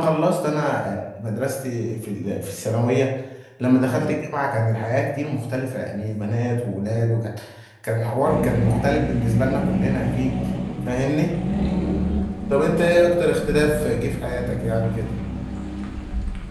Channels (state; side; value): identical; both; correlation 1.00